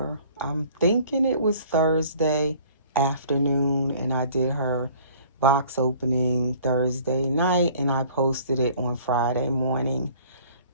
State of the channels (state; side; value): inverted; both; correlation -0.52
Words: I'm thinking it was Thursday afternoon, and I did her box opening Thursday night, and I posted it on Friday morning.